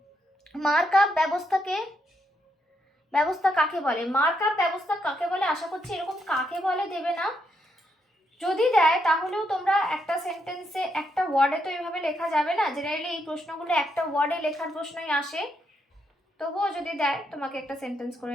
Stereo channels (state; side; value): normal; both; correlation 0.79